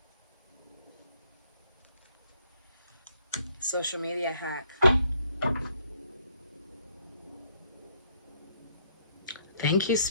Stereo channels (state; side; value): inverted; both; correlation -0.68